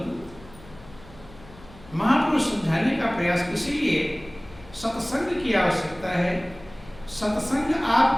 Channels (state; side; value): noise; left; hum, 20 dB below the sound